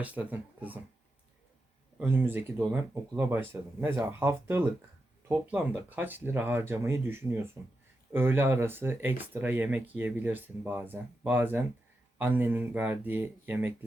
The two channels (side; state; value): both; normal; correlation 0.88